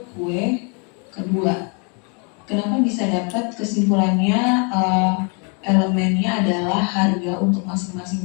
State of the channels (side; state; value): right; quieter; 35.8 dB